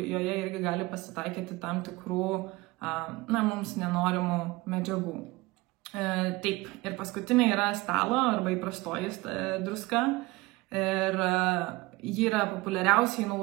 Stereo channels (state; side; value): quieter; left; 21.8 dB